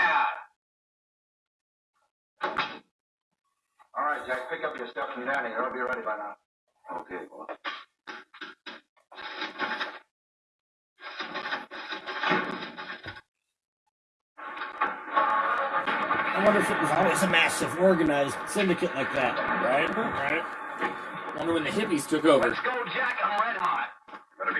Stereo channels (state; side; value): identical; both; correlation 1.00